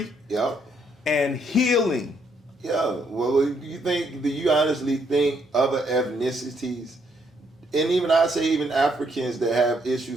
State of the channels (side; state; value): both; normal; correlation 0.72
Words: and healing. Yeah, well, do you honestly think other ethnicities, and even I say even Africans that have